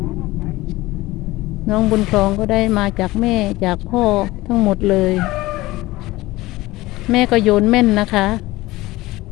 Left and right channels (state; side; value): quieter; right; 18.9 dB